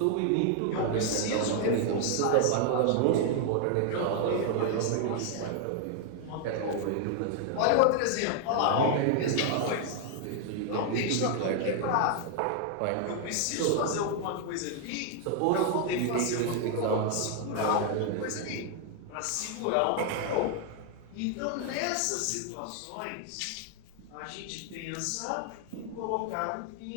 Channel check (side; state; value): both; different; correlation 0.00